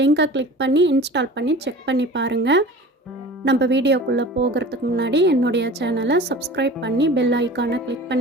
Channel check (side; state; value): both; normal; correlation 0.39